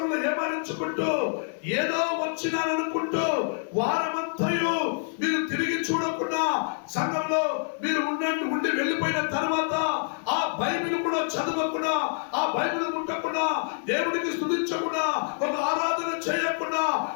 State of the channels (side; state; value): right; silent; digital silence